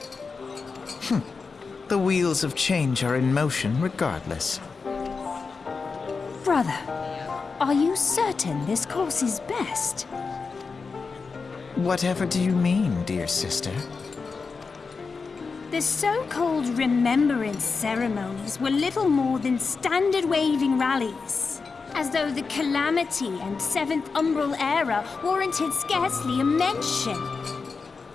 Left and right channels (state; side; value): quieter; right; 4.7 dB